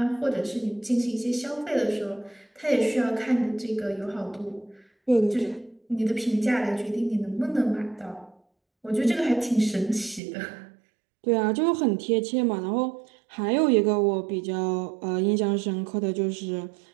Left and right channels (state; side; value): drops out; left; at 10.2 s